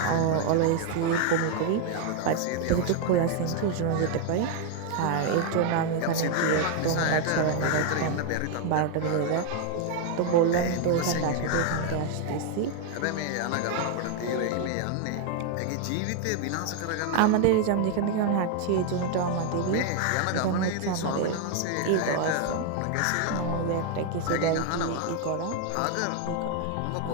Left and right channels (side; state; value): both; different; correlation 0.01